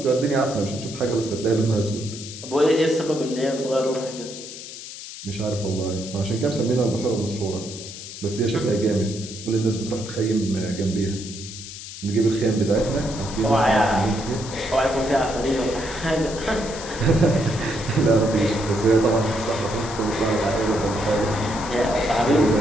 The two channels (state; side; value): noise; left; hiss, 12 dB below the sound